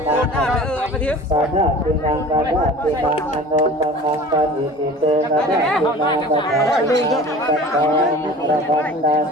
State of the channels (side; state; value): both; normal; correlation 0.42